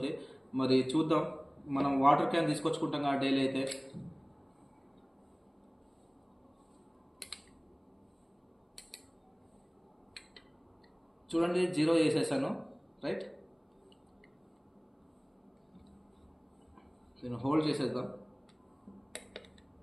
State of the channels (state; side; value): identical; both; correlation 1.00